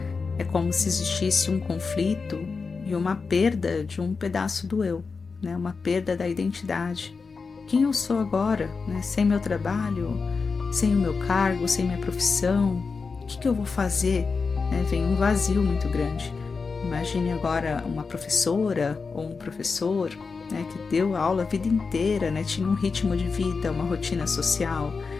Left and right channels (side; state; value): right; quieter; 4.8 dB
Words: é como se existisse um conflito e uma perda de um pedaço do eu, né? Uma perda da identidade. Quem eu sou agora, né? Sem meu trabalho, sem o meu cargo, sem minha profissão, o que eu vou fazer? Vem um vazio muito grande. Imagine agora uma professora ou um professor, né, que deu aula a vida inteira, né, tinha um ritmo de vida, uma rotina social,